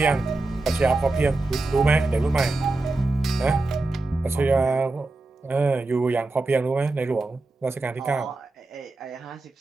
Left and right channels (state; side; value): quieter; left; 3.2 dB